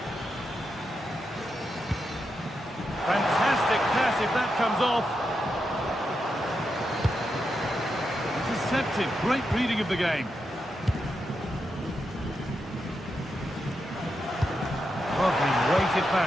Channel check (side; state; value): both; normal; correlation 0.85